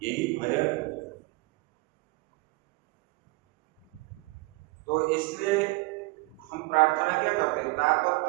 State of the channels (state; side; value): quieter; left; 24.5 dB